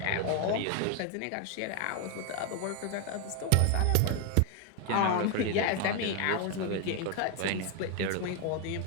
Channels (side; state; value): both; different; correlation 0.01